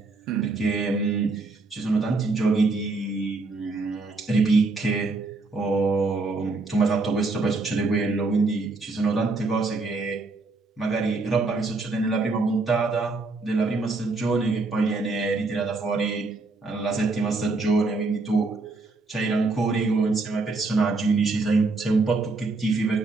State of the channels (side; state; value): left; quieter; 3.6 dB